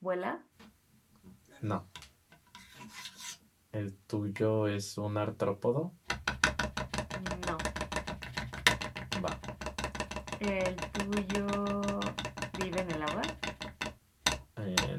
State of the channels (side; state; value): both; identical; correlation 1.00